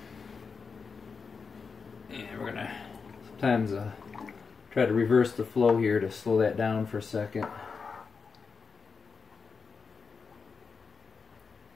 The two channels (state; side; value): quieter; right; 5.2 dB